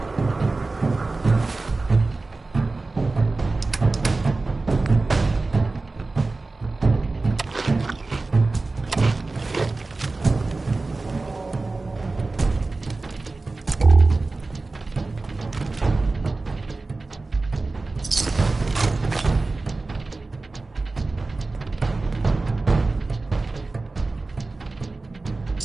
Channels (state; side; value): quieter; left; 3.5 dB